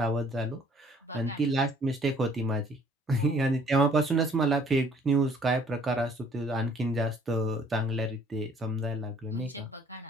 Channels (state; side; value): normal; both; correlation 0.58